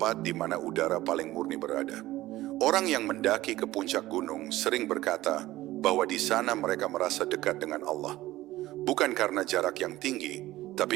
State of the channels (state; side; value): quieter; left; 16.5 dB